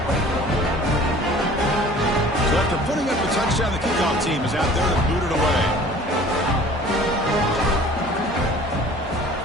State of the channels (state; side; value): normal; both; correlation 0.48